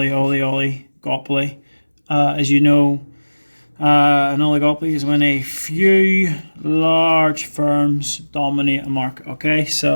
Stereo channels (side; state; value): both; inverted; correlation -1.00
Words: As you know, an oligopoly is when a few large firms dominate a market. Okay,